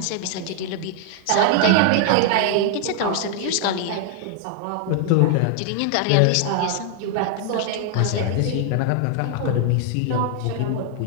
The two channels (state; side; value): different; both; correlation 0.00